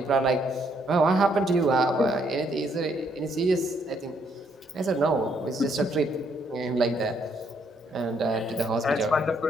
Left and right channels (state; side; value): normal; both; correlation 0.71